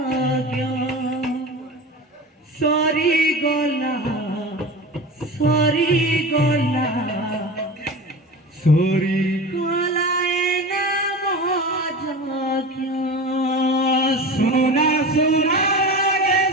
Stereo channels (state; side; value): normal; both; correlation 0.31